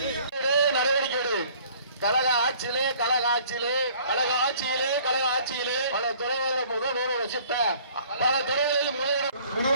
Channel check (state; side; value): inverted; both; correlation -0.54